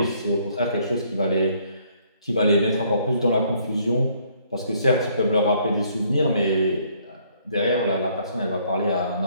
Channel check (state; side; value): inverted; both; correlation -0.65